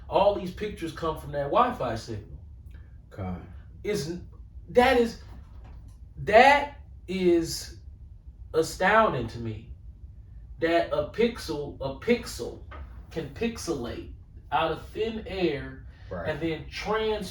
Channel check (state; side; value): identical; both; correlation 1.00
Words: All these pictures come from that Wi-Fi signal. God. that is astounding to me. That a pixel can pixelate out of thin air Right. and then